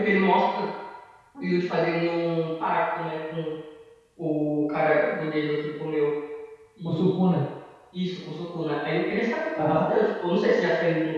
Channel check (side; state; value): both; identical; correlation 1.00